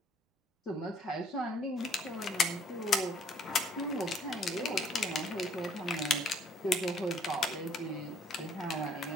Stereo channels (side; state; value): both; normal; correlation 0.61